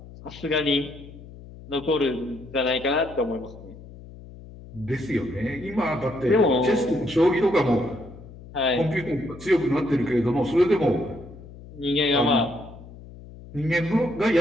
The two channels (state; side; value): noise; left; hum, 17 dB below the sound